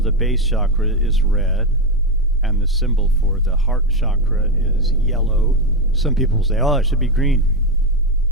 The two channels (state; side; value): normal; both; correlation 0.10